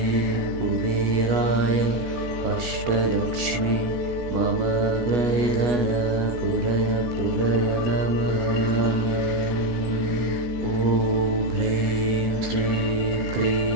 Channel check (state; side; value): late; left; 16 ms